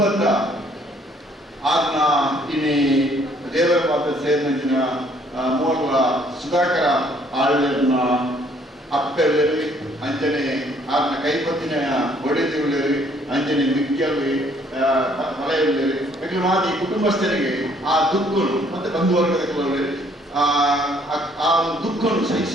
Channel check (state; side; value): normal; both; correlation 0.63